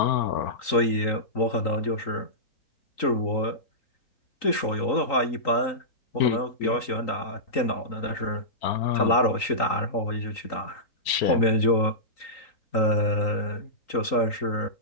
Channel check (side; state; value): right; late; 3.9 ms